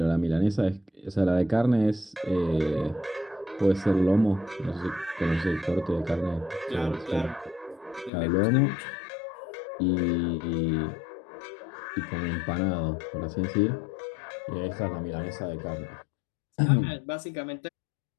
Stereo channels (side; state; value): right; drops out; at 8.1 s